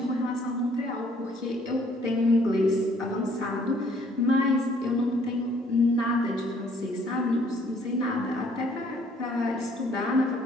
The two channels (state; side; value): normal; both; correlation 0.62